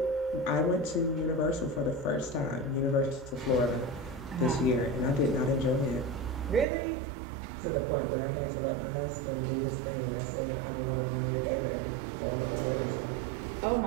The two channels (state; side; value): drops out; left; at 6.7 s